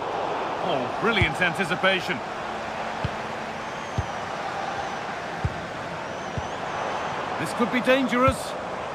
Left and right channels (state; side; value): identical; both; correlation 1.00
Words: Oh, brilliant anticipation. This could be dangerous.